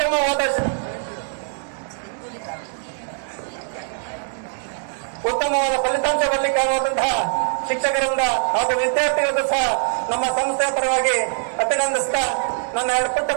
ಫಲಿತಾಂಶ ಬರಲಿಕ್ಕಾಗುವಂತಹ ಶಿಕ್ಷಕರಿಂದ ಹಾಗೂ ವಿದ್ಯಾರ್ಥಿಗಳಿಗೂ ಸಹ ನಮ್ಮ ಸಂಸ್ಥೆಯ ಪರವಾಗಿ ಅಭಿನಂದಿಸ್ತಾ ನನ್ನ 2 ಪುಟ್ಟ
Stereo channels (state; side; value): silent; left; digital silence